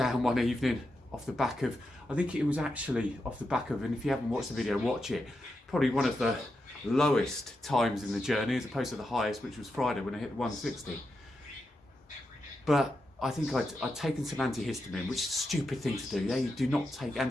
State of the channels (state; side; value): normal; both; correlation 0.87